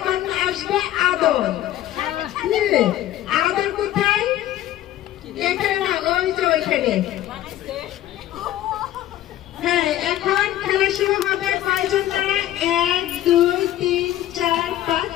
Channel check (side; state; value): right; quieter; 13.2 dB